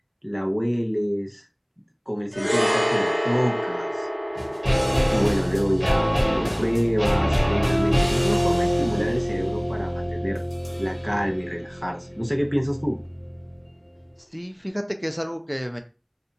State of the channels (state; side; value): identical; both; correlation 1.00